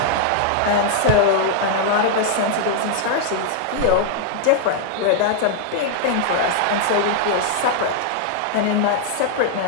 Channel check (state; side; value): different; both; correlation -0.01